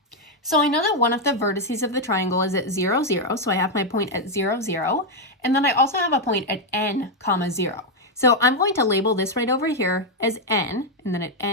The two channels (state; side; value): normal; both; correlation 0.01